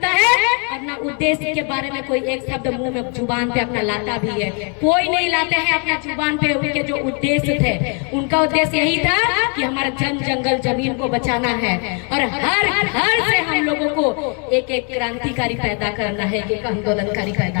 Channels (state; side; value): quieter; right; 37.9 dB